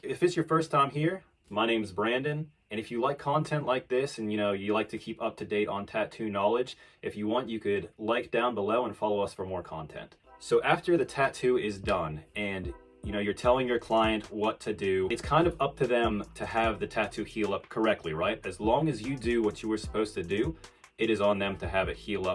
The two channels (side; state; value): both; identical; correlation 1.00